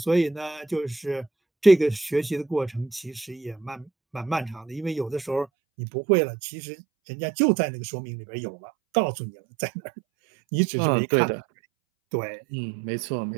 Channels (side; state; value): left; drops out; at 5.5 s